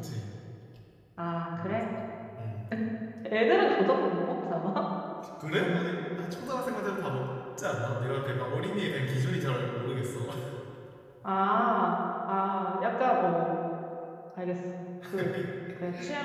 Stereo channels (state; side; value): identical; both; correlation 1.00